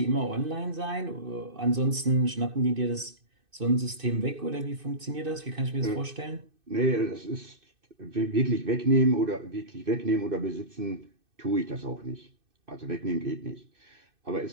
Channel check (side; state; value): left; late; 2.6 ms